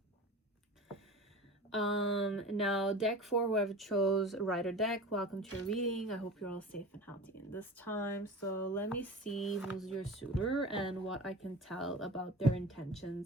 Now deck 4, whoever chose Rider deck, welcome to your reading. I hope you're all safe and healthy in this time. So let me see who's your suitor and what I can tell about their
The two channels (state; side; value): normal; both; correlation 0.35